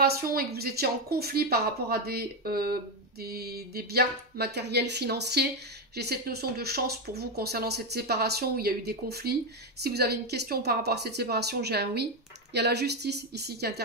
et que vous étiez en conflit par rapport à des biens matériels, financiers, j'ai cette notion de chance pour vous concernant cette séparation où il y a eu des conflits. Si vous avez une question par rapport à cette séparation, j'ai un oui. Il y a la justice ici qui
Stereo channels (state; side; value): normal; both; correlation 0.08